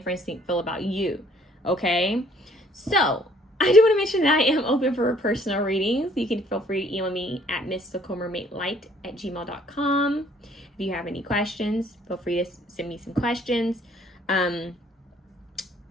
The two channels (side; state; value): both; normal; correlation 0.60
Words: friends feel about you? Okay, so I do want to mention that I am open for personal readings. You can feel free to email me at mysticalmermaidlight@gmail.com. If you have any questions, feel free to send me some questions.